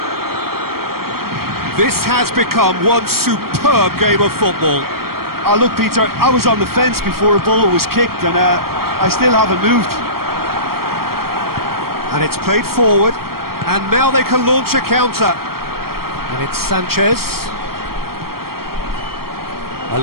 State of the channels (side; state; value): left; late; 0.94 ms